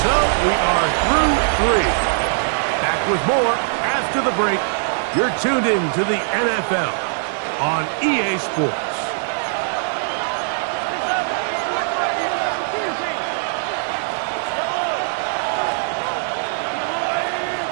So we are through 3. Back with more after the break. You're tuned in to the NFL on EA Sports.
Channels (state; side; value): silent; left; 65 dB below the other